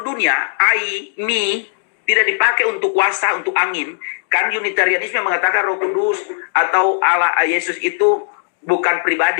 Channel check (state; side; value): silent; right; digital silence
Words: dunia, I, me, tidak dipakai untuk kuasa, untuk angin. Kan Unitarianisme mengatakan Roh Kudus atau Allah Yesus itu bukan